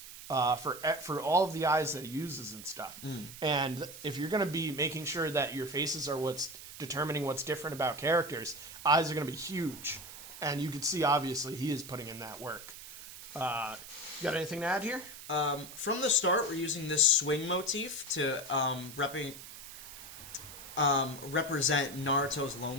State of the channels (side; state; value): right; noise; hiss, 14 dB below the sound